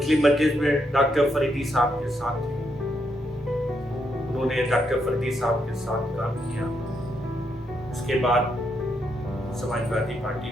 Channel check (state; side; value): normal; both; correlation 0.78